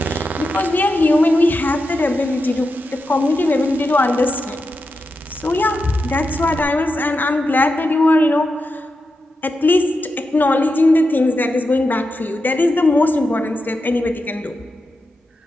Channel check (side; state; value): both; normal; correlation 0.88